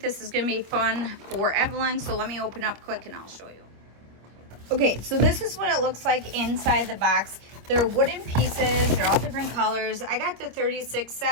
is going to be fun for Evelyn. So let me open up quick and I'll show you. Okay, so this is what it looks like inside the box. They're wooden pieces. They're all different colors. I got the 36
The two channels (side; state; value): left; late; 26 ms